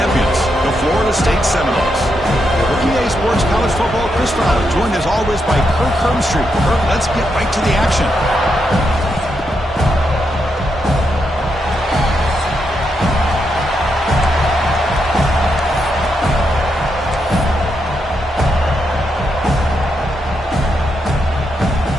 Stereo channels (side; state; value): both; normal; correlation 0.82